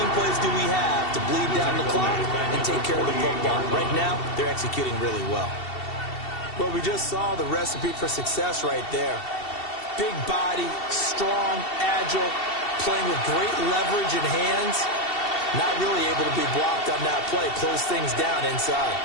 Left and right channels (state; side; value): late; right; 2.7 ms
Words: plays do we have to bleed down the clock and take care of the football? Right now, they're executing really well. Well, we just saw the recipe for success right there. Big body, strong, agile, playing with great leverage in hands. Not really able to be blocked on that play. Close things down inside.